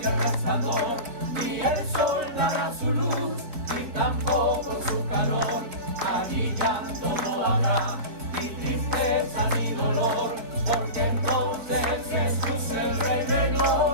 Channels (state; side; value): late; left; 4.1 ms